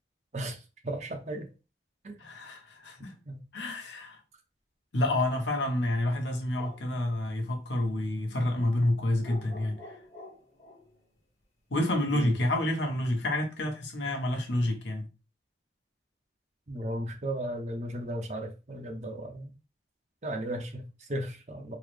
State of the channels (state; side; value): normal; both; correlation 0.69